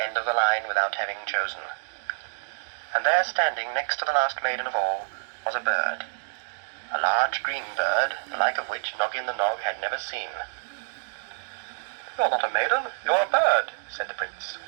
end of the line without having chosen. And there, standing next to the last maiden of all, was a bird, a large green bird, the like of which Noggin the Nog had never seen. "You're not a maiden, you're a bird," said the prince.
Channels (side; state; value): left; silent; digital silence